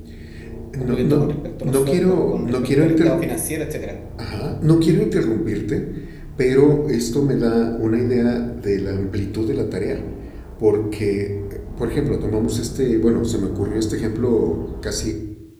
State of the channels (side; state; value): both; identical; correlation 1.00